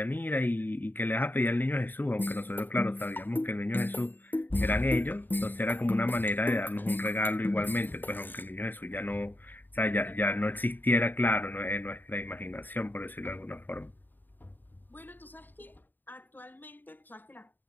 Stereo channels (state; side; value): late; right; 0.090 ms